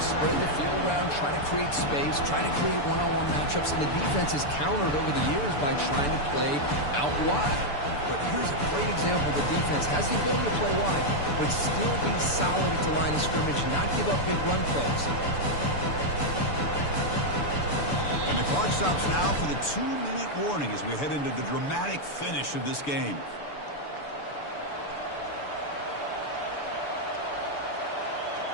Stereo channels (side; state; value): right; late; 6.9 ms